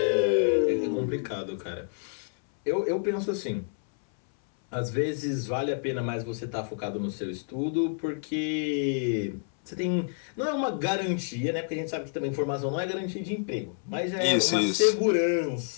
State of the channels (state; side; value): silent; right; 59 dB below the other